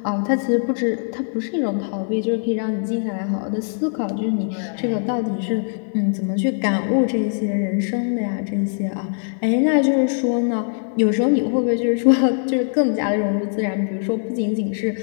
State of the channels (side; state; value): right; silent; digital silence